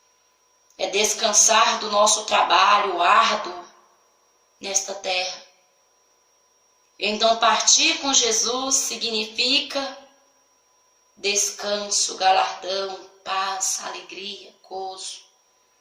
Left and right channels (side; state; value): both; identical; correlation 1.00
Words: É descansar do nosso trabalho árduo nesta terra. Então, partir com Jesus significa descanso, galardão, paz, alegria, gozo.